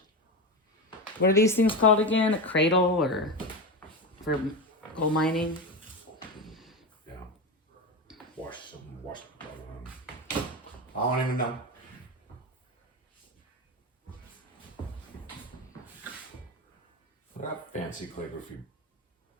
What are these things called again? A cradle or for gold mining? Yeah. Wash. I don't even know. That fancy calligraphy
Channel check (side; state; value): both; normal; correlation 0.18